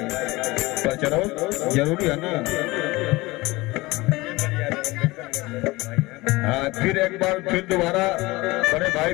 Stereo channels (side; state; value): right; quieter; 21.3 dB